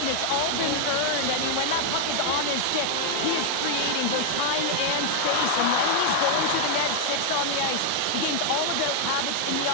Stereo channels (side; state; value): both; different; correlation 0.00